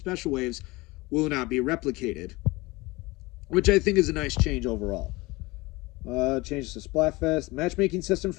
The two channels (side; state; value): right; quieter; 22.4 dB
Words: waves, will not be replicated, which I think is a nice change overall. Changes to Splatfest. Matchmaking system